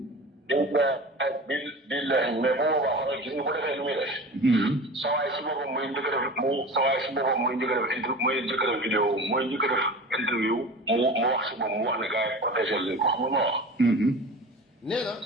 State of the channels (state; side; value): normal; both; correlation 0.34